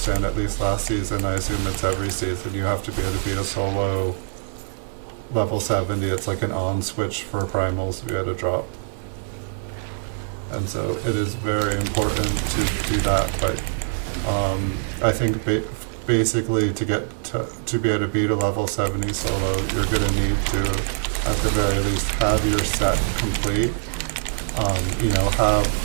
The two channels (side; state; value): left; silent; 63 dB below the other